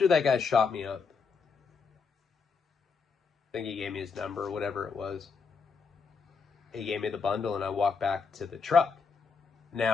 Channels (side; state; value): right; quieter; 5.2 dB